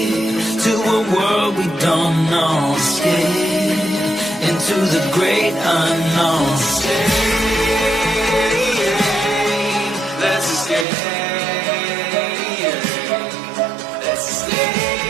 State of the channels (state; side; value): drops out; left; at 10.9 s